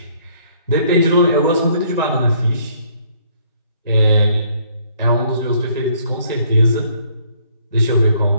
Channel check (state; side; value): inverted; both; correlation -0.64